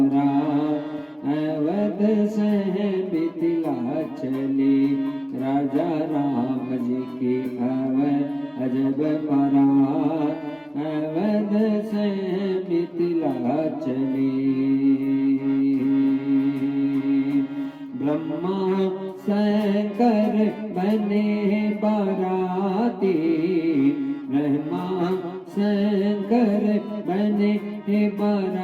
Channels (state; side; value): identical; both; correlation 1.00